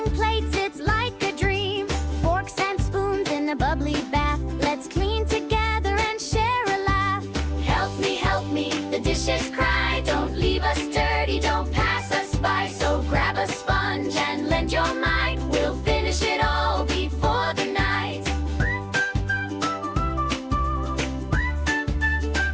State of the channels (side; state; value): both; identical; correlation 1.00